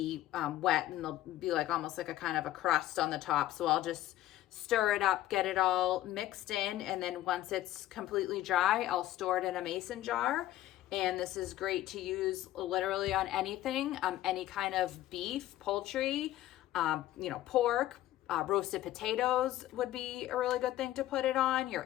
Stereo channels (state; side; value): quieter; right; 14.5 dB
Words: wet, and there'll be like almost like a kind of a crust on the top. So I'll just stir it up, get it all mixed in, and then once it's completely dry, I'll store it in a mason jar. And this is great to use literally on anything, any kind of beef, poultry, pork, roasted potatoes would be a really good thing to put it on,